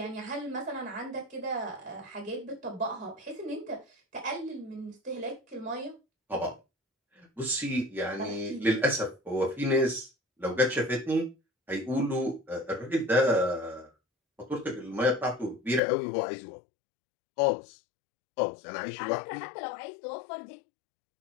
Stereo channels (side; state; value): right; drops out; at 15.8 s